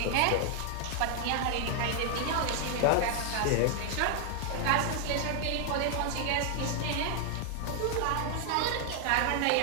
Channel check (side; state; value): both; different; correlation 0.00